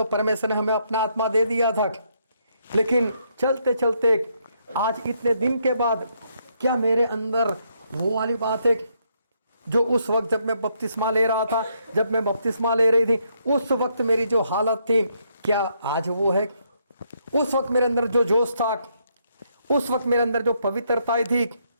परमेश्वर ने हमें अपना आत्मा दे दिया था। लेकिन चलते चलते आज इतने दिन के बाद क्या मेरे अंदर वो वाली बात है जो उस वक्त जब मैं बपतिस्मा ले रहा था, जब मैं बपतिस्मा ले रही थी, उस वक्त मेरी जो हालत थी, क्या आज वो है? उस वक्त मेरे अंदर जो जोश था, उस वक्त मेरे अंदर जो पवित्रता थी,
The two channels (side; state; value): both; inverted; correlation -0.74